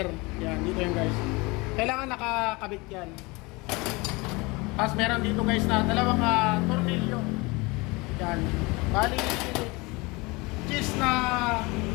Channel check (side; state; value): right; quieter; 25.2 dB